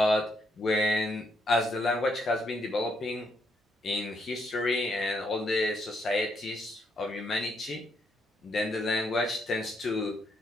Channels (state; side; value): normal; both; correlation 0.75